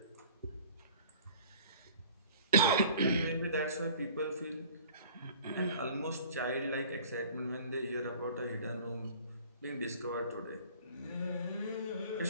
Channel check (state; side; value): inverted; both; correlation -0.48